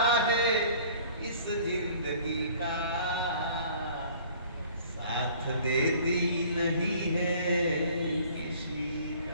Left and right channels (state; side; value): inverted; both; correlation -0.52